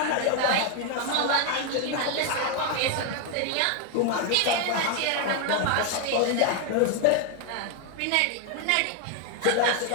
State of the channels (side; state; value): both; different; correlation 0.01